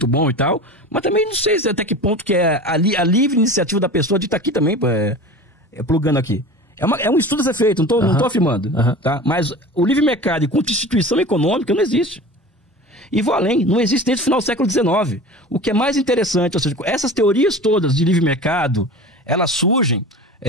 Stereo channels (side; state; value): both; normal; correlation 0.35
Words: bom e tal, mas também não sei até que ponto que é a livre iniciativa da pessoa de estar aqui também, plugando aqui. É um estudo a ser feito, não tô afirmando, tá? Mas o livre mercado e constituição econômica não existe. E vou além, não existe desde o final do século XIX. O que é mais interessante, ou seja, essas teorias todas de livre mercado, elas surgem